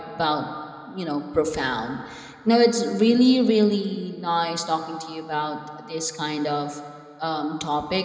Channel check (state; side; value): identical; both; correlation 1.00